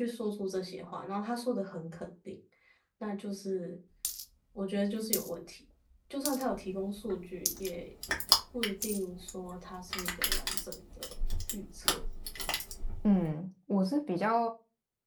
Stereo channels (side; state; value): both; identical; correlation 1.00